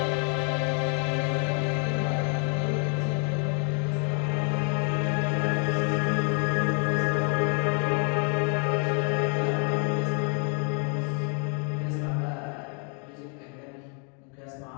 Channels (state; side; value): quieter; right; 34.9 dB